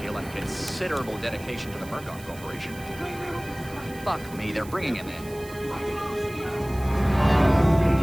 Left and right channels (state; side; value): noise; right; hiss, 19 dB below the sound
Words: and considerable dedication to the Murkoff Corporation. Fuck me, they're bringing him in.